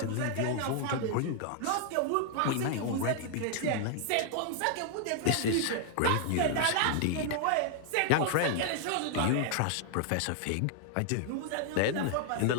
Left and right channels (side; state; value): both; different; correlation 0.00